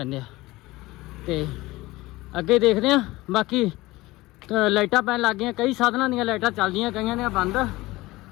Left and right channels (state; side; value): quieter; right; 19.6 dB